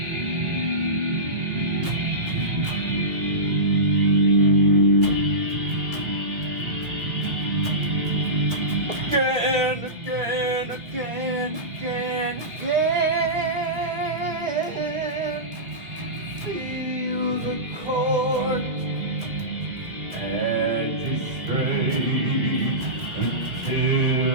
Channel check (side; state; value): left; late; 2.1 ms